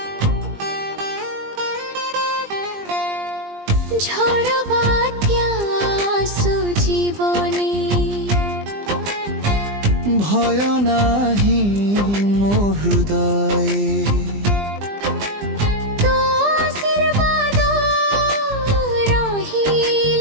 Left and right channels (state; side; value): late; left; 20 ms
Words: ঝড় বাତ୍যা আସୁ জীবনে ভয় নাহি মো হৃদয়ে তো আশীর্বাদ